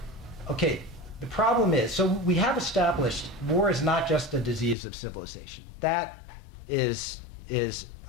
Okay, the problem is, so we have established war is not just a disease of civilization. That has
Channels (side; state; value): right; drops out; at 4.8 s